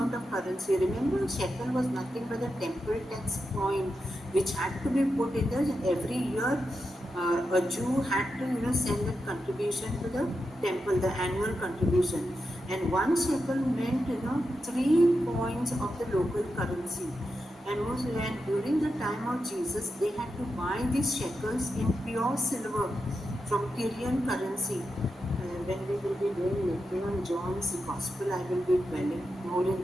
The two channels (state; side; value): normal; both; correlation 0.88